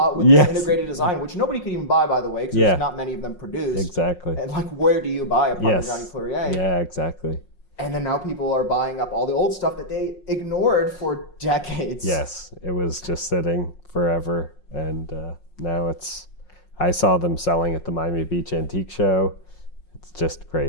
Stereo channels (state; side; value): late; right; 5.5 ms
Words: with this integrated design, which nobody could even buy, by the way, because there's not many of them produced. Exactly. And like, where do you buy a Parmigiani Fleurier? Yeah, exactly. And then now people are buying up all the old stuff that they ignored for decades. Yes, it was just sitting forever. And now I saw them selling at the Miami Beach Antique Show. It's just